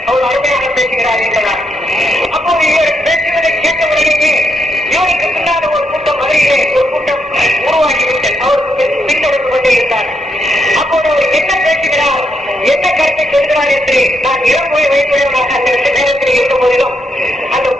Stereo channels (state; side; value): normal; both; correlation 0.79